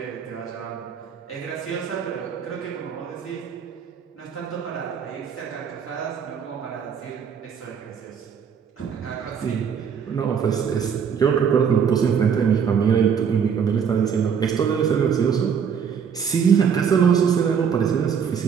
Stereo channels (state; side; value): quieter; left; 7.2 dB